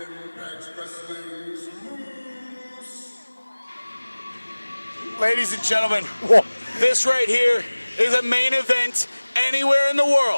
Wrestling's Moose. Ladies and gentlemen, this right here is a main event anywhere in the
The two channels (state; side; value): inverted; both; correlation -1.00